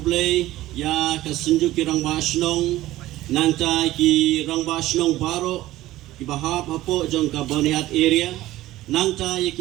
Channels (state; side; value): quieter; left; 15.8 dB